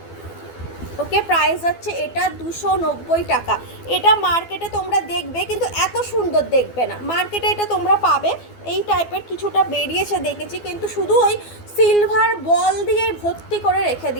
ওকে, প্রাইস হচ্ছে এটা 290 টাকা। এটা মার্কেটে তোমরা দেখবে কিন্তু এত সুন্দর দেখবে না, মার্কেটে এটা তোমরা পাবে এই টাইপের কিছুটা বেরিয়েছে দেখেছি, কিন্তু শুধু ওই সিলভার বল দিয়ে ভর্তি করে রেখে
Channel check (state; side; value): late; right; 12 ms